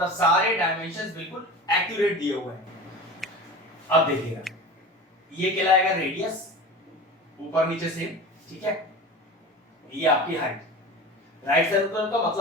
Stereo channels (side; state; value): both; normal; correlation 0.33